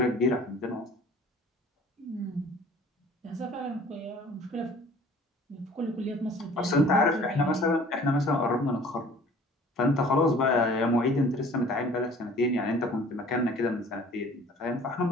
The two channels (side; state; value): both; normal; correlation 0.50